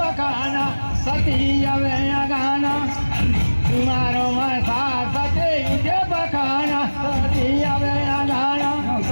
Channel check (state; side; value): inverted; both; correlation -1.00